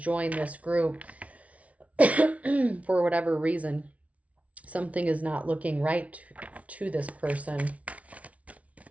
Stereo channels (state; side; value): late; left; 0.066 ms